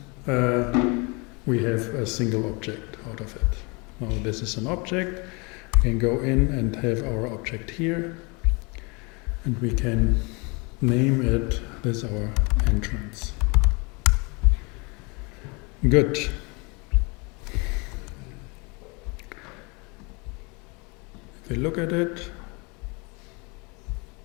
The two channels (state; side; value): quieter; right; 29.6 dB